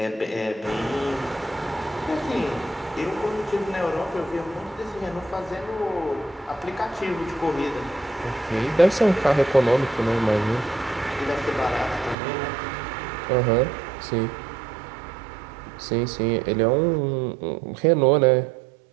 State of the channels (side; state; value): left; drops out; at 12.2 s